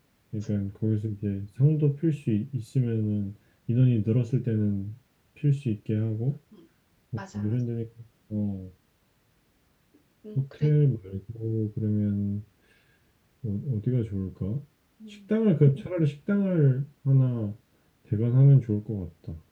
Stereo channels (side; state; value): both; identical; correlation 1.00